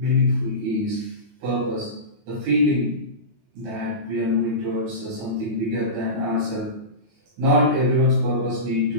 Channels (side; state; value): left; late; 19 ms